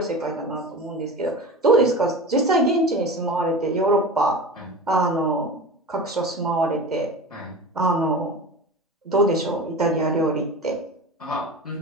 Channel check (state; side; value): normal; both; correlation 0.32